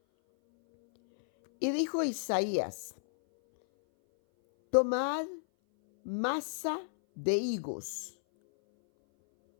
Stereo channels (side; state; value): right; silent; 56 dB below the other